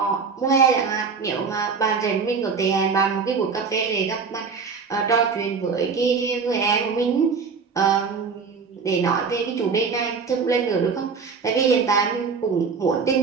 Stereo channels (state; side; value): quieter; left; 5.4 dB